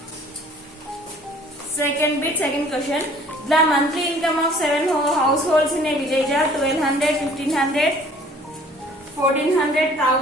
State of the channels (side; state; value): both; normal; correlation 0.54